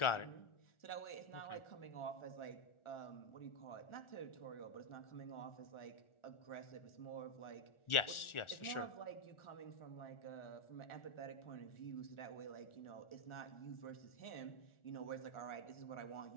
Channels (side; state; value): right; late; 1.4 ms